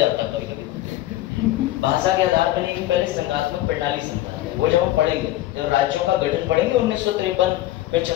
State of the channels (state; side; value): quieter; right; 15.3 dB